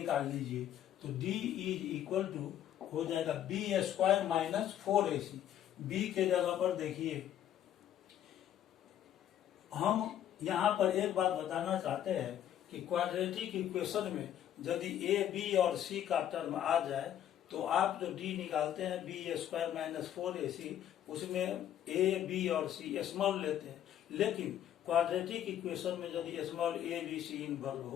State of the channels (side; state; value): right; quieter; 10.9 dB